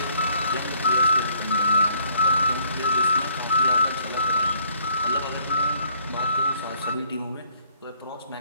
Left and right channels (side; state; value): both; inverted; correlation -0.63